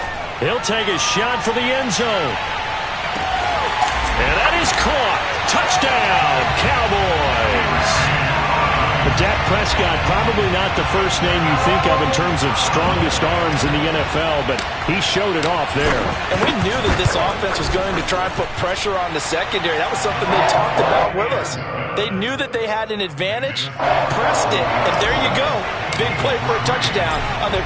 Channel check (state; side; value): identical; both; correlation 1.00